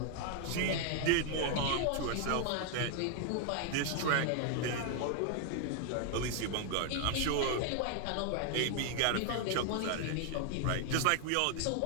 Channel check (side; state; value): both; different; correlation 0.00